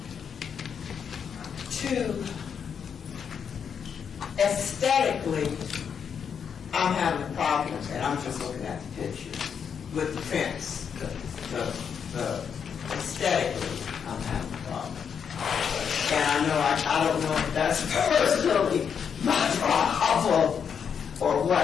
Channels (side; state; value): right; quieter; 7.2 dB